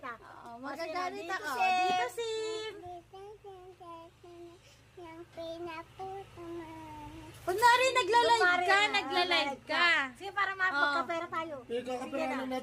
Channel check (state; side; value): identical; both; correlation 1.00